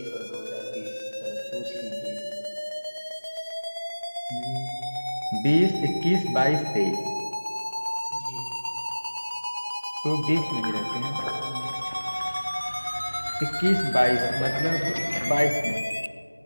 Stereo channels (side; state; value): both; inverted; correlation -1.00